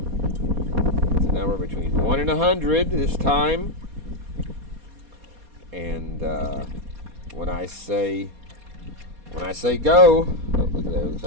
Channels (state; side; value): late; left; 4.2 ms